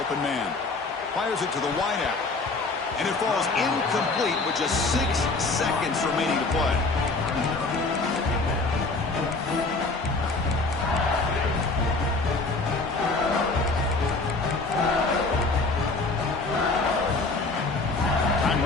man. Fires it to the wideout. And it falls incomplete with just 6 seconds remaining to play.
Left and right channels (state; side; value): quieter; right; 3.6 dB